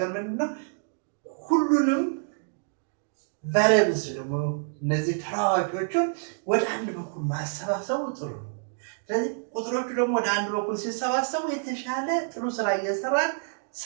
ምንድነው ሁሉንም ቫሪያብልስ ደግሞ እነዚህ ተለዋዋጮቹን ወደ አንድ በኩል ማሰባሰቡ ጥሩ ነው። ስለዚህ ቁጥሮቹ ደግሞ ወደ አንድ በኩል ሲሰባሰቡ የተሻለ ጥሩ ስራ እየሰራን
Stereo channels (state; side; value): silent; left; digital silence